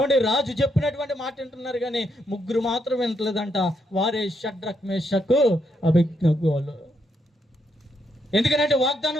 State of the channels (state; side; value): normal; both; correlation 0.78